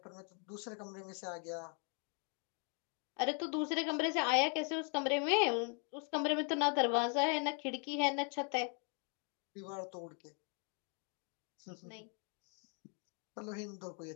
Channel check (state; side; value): quieter; right; 40.0 dB